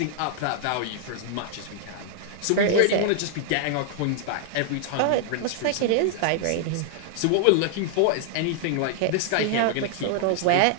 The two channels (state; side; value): different; both; correlation 0.00